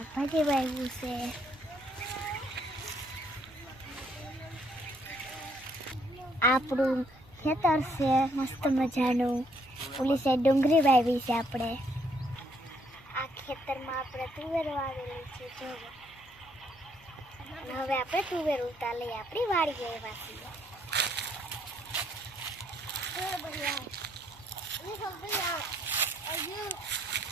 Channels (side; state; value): both; normal; correlation 0.69